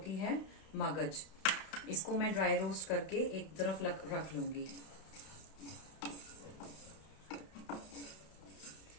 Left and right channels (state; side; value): late; right; 32 ms